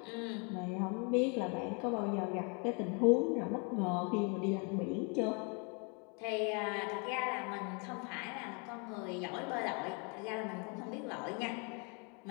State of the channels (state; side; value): quieter; right; 35.2 dB